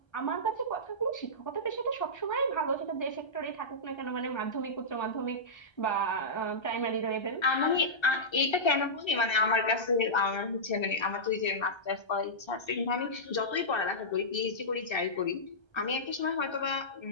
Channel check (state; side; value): late; right; 1.3 ms